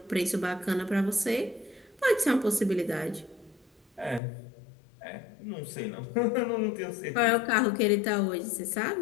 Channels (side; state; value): right; drops out; at 4.2 s